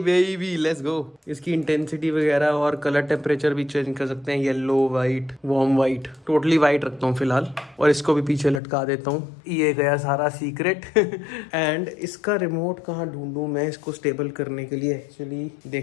लेट्स गो। इसकी इंटेंसिटी वगैरह और कलर टेम्परेचर भी चेंज कर सकते हैं, yellow, white, warm white, totally white रखता हूँ फिलहाल, और इसको भी पीछे लटका देता हूँ। ये गया सारा सीक्रेट एंड इसका रिमोट कहाँ ढूंढूं मैं इसको स्टेबल करने के लिए, एक्चुअली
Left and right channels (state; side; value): drops out; right; at 8.6 s